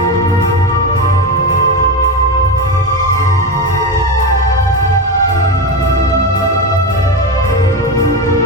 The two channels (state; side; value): normal; both; correlation 0.17